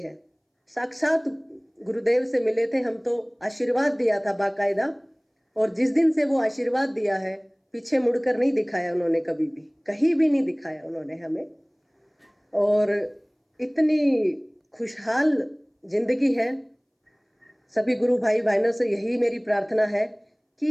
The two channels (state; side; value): identical; both; correlation 1.00